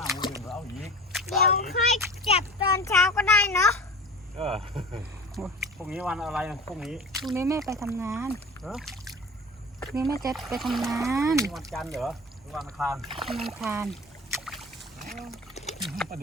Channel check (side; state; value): both; normal; correlation 0.37